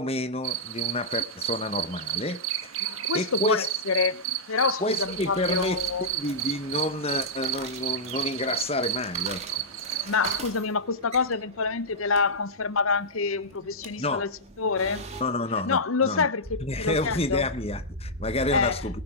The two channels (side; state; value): both; normal; correlation -0.10